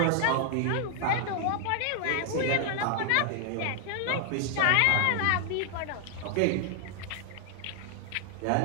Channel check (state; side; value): different; both; correlation 0.00